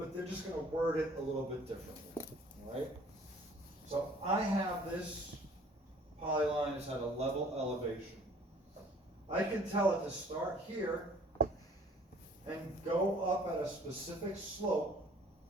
they're just going to word it a little bit differently, all right? So I have this polyline is at a level elevation. I can tell it to start here and go up at a specific slope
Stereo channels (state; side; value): normal; both; correlation 0.53